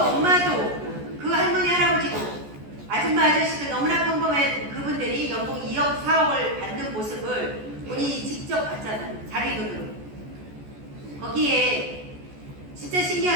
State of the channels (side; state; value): left; late; 14 ms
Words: 엄마도, 그 할머니, 할아버지도, 아줌마, 아저씨도 너무나 평범한 그분들이 연봉 2억, 4억을 받는 모습을 본인이 직접 봤잖아요. 자기 눈으로. 거기에 진짜